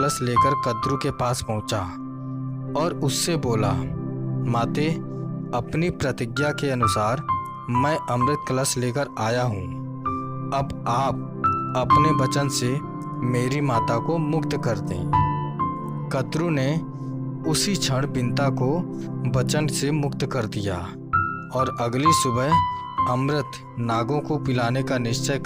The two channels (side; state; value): both; identical; correlation 1.00